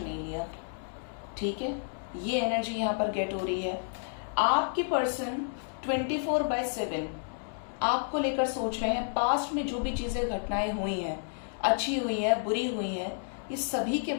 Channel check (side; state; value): right; silent; digital silence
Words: नहीं लिया। ठीक है, ये एनर्जी यहाँ पर गेट हो रही है। आपकी पर्सन 24/7 आपको लेकर सोच रहे हैं। पास्ट में जो भी चीजें घटनाएं हुई हैं, अच्छी हुई हैं, बुरी हुई हैं, ये सभी के